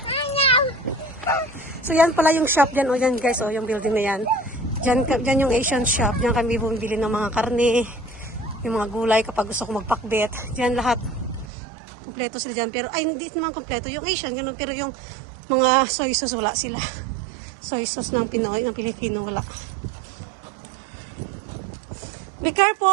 So yan pala yung shop dyan. O yan guys, yung building na yan. Dyan yung Asian shop. Dyan kami bumibili ng mga karne, yung mga gulay kapag gusto ko magpakbet. Dyan lahat. Kompleto sila dyan. Pero, ay, hindi naman kompleto. Yung Asian, ganun. Pero yung mga soy sauce, wala sila. Soy sauce ng Pinoy, ng Pilipino, wala. Be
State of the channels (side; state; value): left; drops out; at 11.5 s